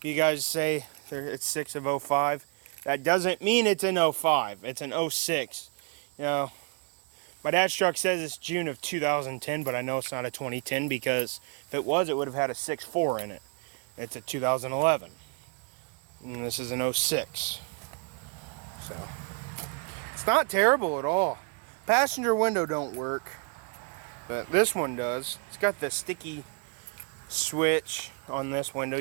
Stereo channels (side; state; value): left; quieter; 34.9 dB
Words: you guys say it's 6 of 05, that doesn't mean it's in 05. It's in 06. You know, my dad's truck says it's June of 2010, but I know it's not a 2010 because if it was, it would have had a 6.4 in it. It's a 2011. And this is an 06. So, it's not terrible at all. Passenger window don't work, but this one does. It's got the sticky switch on this window.